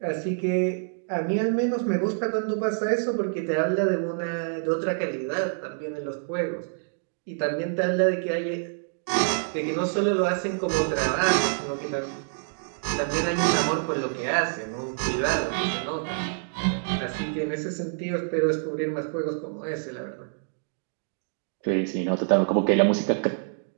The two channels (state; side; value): silent; left; digital silence